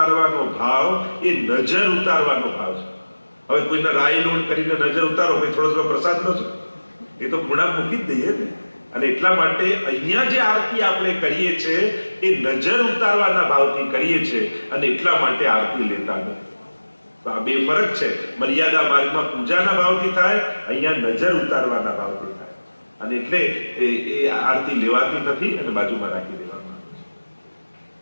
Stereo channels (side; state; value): both; inverted; correlation -1.00